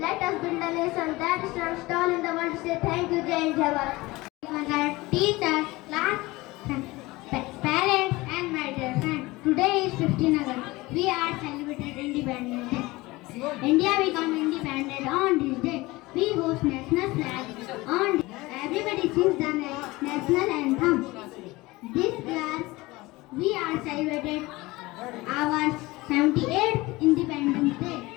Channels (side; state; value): right; quieter; 21.0 dB